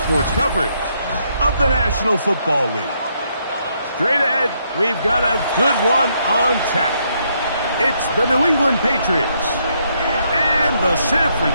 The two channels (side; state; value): both; inverted; correlation -0.74